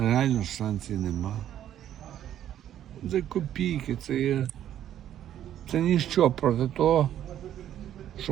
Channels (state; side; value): quieter; left; 11.1 dB